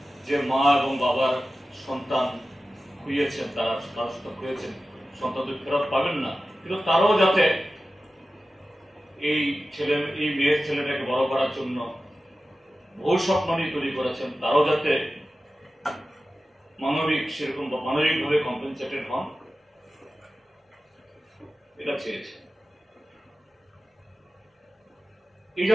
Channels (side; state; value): both; normal; correlation 0.95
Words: যে মা এবং বাবার সন্তান খুইয়েছেন, তারা খুইয়েছেন, সন্তানদের ফেরত পাবেন না, কিন্তু তারাও যাতে এই মেয়ের ছেলেটাকে বড় করার জন্য বহু স্বপ্ন নিয়ে তৈরি করেছেন, তারাও যাতে মানবিকভাবে কম্পেনসেটেড হন, এটা চেয়েছে। এই